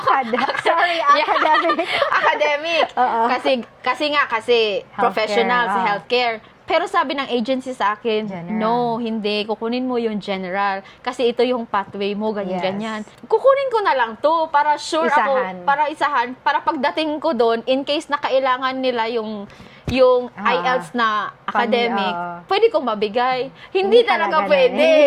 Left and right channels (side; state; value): both; identical; correlation 1.00